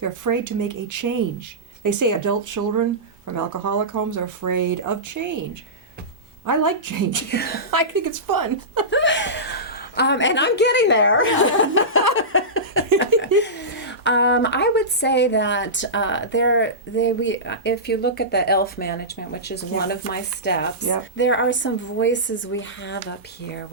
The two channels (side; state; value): both; normal; correlation -0.18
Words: afraid to make a change. They say adult children from alcoholic homes are afraid of change. I like change. I think it's fun. And I'm getting there. I would say that if you look at the ELF management, which is one of my steps, there are some voices we have up here,